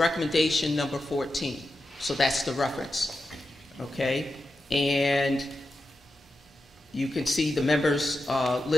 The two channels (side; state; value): both; normal; correlation 0.90